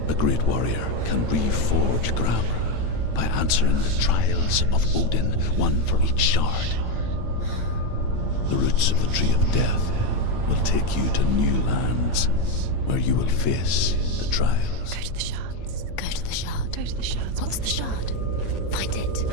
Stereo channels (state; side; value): late; right; 8.9 ms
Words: a great warrior can reforge Gramr by answering the trials of Odin, one for each shard. The roots of the Tree of Death will take you to new lands where you will face the trials. Go to the shards. Go to the shard. go to the shards. What's the shard? Find it.